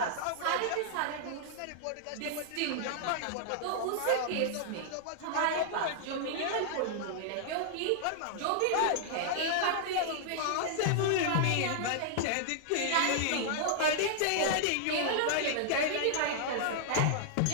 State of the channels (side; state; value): both; different; correlation -0.01